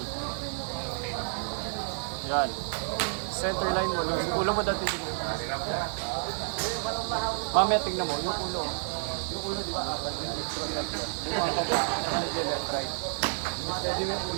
Yan. Center line mo. Yung ulo mo dati dito. Mamaya tingnan mo. Yung ulo. Yung ulo di ba? Apat yung left right. Pwede mo yung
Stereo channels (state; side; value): silent; left; digital silence